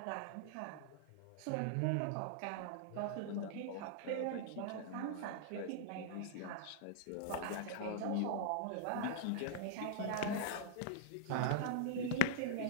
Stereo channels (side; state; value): both; different; correlation -0.01